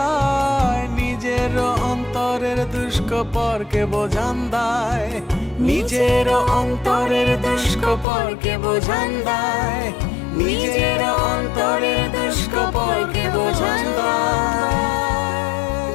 নিজের অন্তরের দুষ্কপরকে বোঝান দায়, নিজের অন্তরের দুষ্কপরকে বোঝান দায়, নিজের অন্তরের দুষ্কপরকে বোঝান দায়।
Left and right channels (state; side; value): drops out; right; at 8.1 s